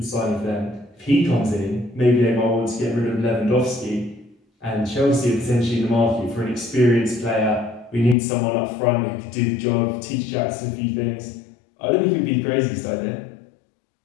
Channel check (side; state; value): right; drops out; at 8.2 s